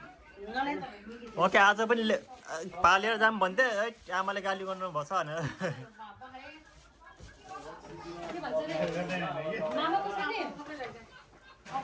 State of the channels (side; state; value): both; identical; correlation 1.00